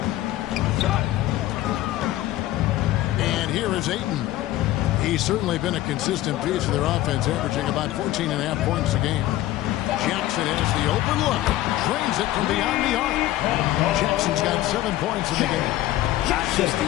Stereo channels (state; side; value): quieter; right; 15.1 dB